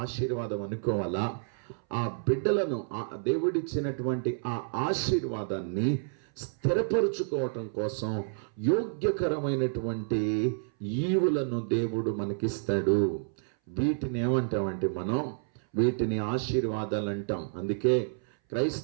ఆశీర్వాదం అనుకోవాలా? ఆ బిడ్డలను దేవుడిచ్చినటువంటి ఆ ఆశీర్వాదాన్ని స్థిరపరుచుకోవటం కోసం యోగ్యకరమైనటువంటి ఈవులను దేవుడు మనకిస్తాడు. వీటిని ఏమంటామంటే వీటిని ఆశీర్వాదాలు అంటాం. అందుకే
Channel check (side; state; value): left; silent; 58 dB below the other